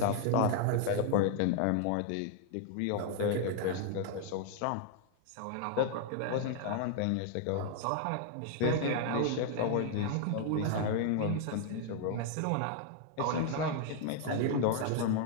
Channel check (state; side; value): different; both; correlation 0.00